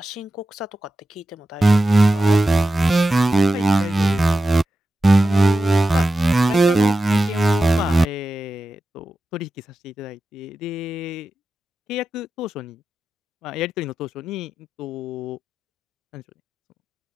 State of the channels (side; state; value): both; normal; correlation 0.92